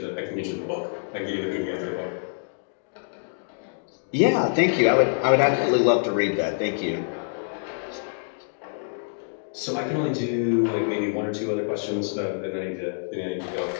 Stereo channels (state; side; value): silent; right; digital silence